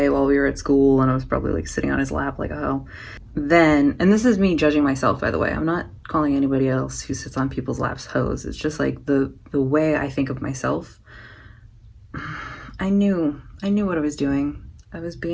while we were at school, and I was probably like sitting on his lap like, oh. Then, and this is me judging myself, by the way. I'm not calling anybody else who sits on people's laps hoes. It's just like the way I think of myself. I knew what I was doing. I was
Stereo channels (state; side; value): identical; both; correlation 1.00